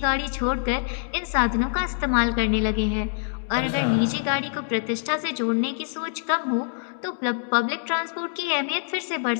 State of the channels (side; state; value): right; silent; digital silence